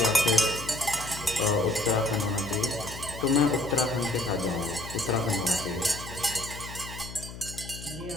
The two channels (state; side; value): noise; left; hum, 12 dB below the sound